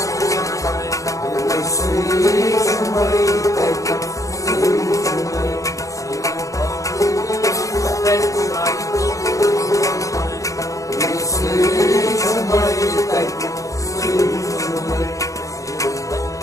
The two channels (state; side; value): late; right; 0.16 ms